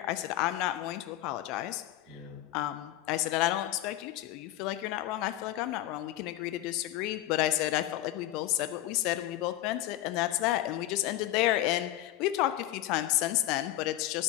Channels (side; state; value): right; quieter; 14.4 dB